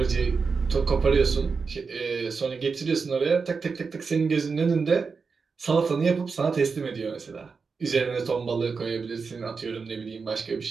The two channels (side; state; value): left; quieter; 5.0 dB